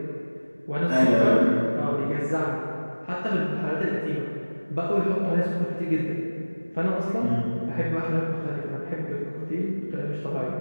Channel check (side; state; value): both; inverted; correlation -1.00